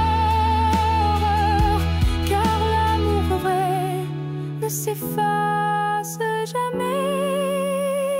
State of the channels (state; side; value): identical; both; correlation 1.00